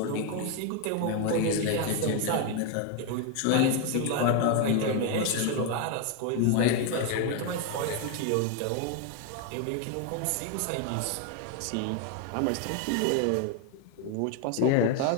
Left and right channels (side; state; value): both; different; correlation 0.01